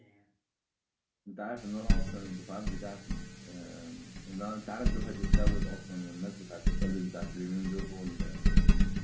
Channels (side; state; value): both; identical; correlation 1.00